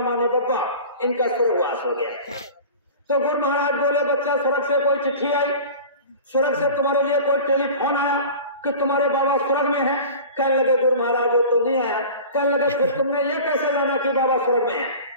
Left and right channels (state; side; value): inverted; both; correlation -0.37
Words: माने बब्बा, इनका स्वर्गवास हो गया। तो गुरु महाराज बोले, बच्चा स्वर्ग से कोई चिट्ठी आई, स्वर्ग से तुम्हारे लिए कोई टेलीफोन आया कि तुम्हारे बाबा स्वर्ग में है? कहने लगे, गुरु महाराज ये तो नहीं आया। कहने लगे, फिर तुमने ये कैसे जाना कि बाबा स्वर्ग में है?